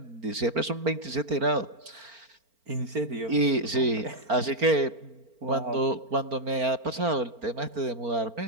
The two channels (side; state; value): left; late; 4.4 ms